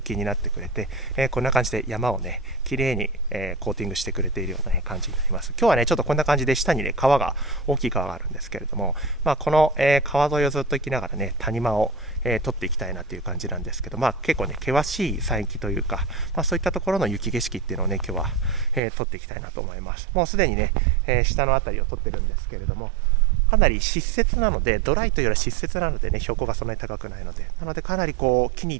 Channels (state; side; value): drops out; left; at 18.8 s